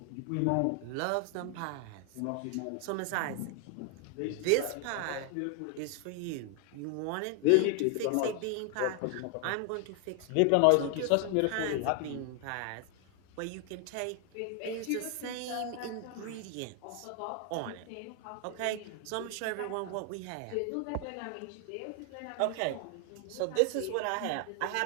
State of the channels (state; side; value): different; both; correlation 0.00